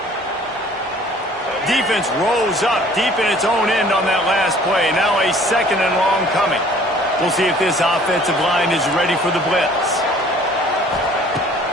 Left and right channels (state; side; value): normal; both; correlation 0.53